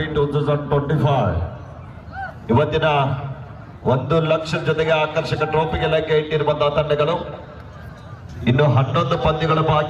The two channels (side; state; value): both; identical; correlation 1.00